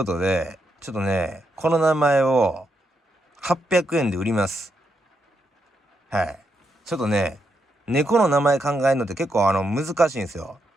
とで、ちょっとね、この名前を800円で売ります。はい。ちょっとね、猫の名前考えるのって結構難しいんですよ。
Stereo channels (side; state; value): both; normal; correlation 0.81